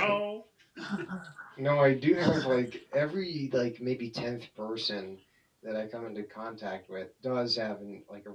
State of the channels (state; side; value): identical; both; correlation 1.00